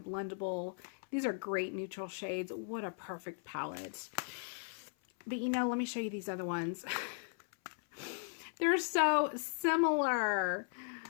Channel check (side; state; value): right; silent; 53 dB below the other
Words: These are great neutral shades. What a perfect palette. But you know, let me show you these other ones. They're so similar.